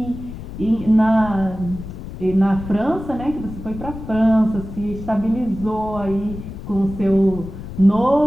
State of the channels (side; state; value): left; noise; rumble, 11 dB below the sound